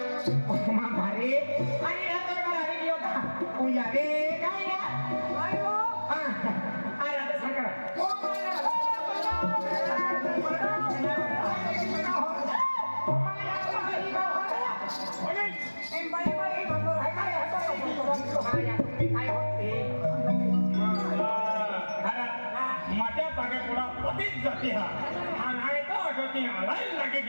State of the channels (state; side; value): inverted; both; correlation -1.00